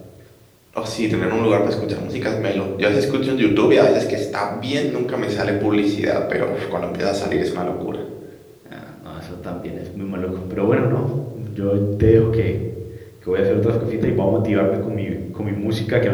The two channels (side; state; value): both; identical; correlation 1.00